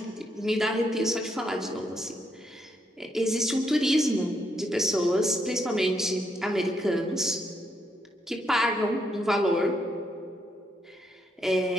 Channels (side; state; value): both; normal; correlation 0.77